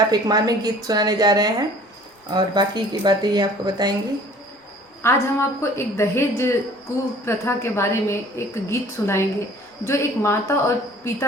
एक मार्मिक गीत सुनाने जा रहे हैं और बाकी की बातें ये आपको बताएंगी। आज हम आपको एक दहेज कुप्रथा के बारे में एक गीत सुनाएंगे जो एक माता और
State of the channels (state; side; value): normal; both; correlation 0.50